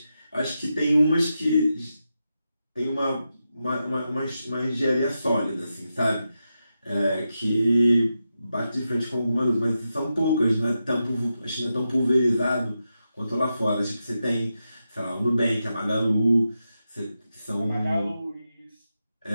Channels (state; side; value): inverted; both; correlation -0.88